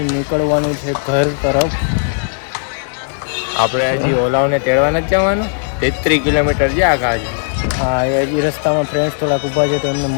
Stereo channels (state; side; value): silent; right; digital silence